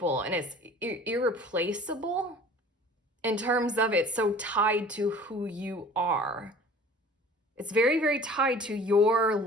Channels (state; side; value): normal; both; correlation 0.46